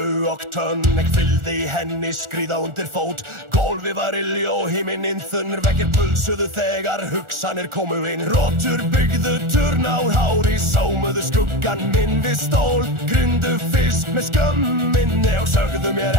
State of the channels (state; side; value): late; left; 1.4 ms